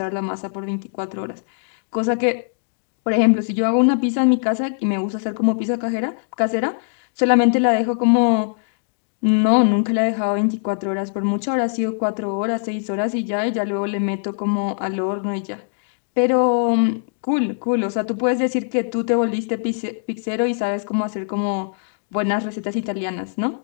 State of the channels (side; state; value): right; silent; digital silence